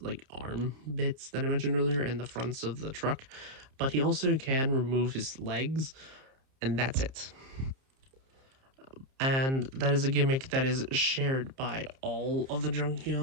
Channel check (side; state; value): left; late; 30 ms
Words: like arm bits that I mentioned earlier, and the fronts of the truck. But he also can remove his legs, and that's it. And that is a gimmick that is shared by all of the